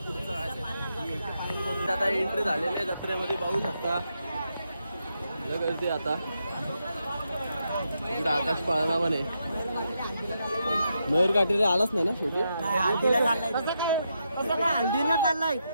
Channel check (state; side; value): inverted; both; correlation -0.83